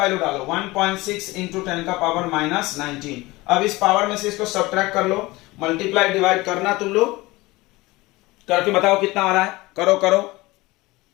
डालो 1.6 इंटू 10 का पावर -19। अब इस पावर में से इसको सब्ट्रैक्ट कर लो, मल्टीप्लाई डिवाइड करना तुम लोग, करके बताओ कितना आ रहा है, करो।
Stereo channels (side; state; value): right; quieter; 21.0 dB